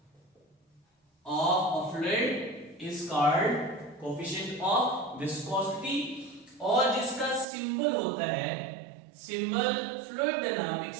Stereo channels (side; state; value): left; drops out; at 7.5 s